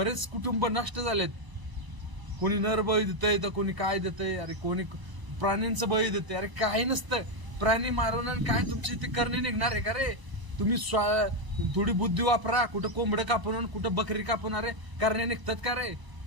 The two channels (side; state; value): left; late; 1.0 ms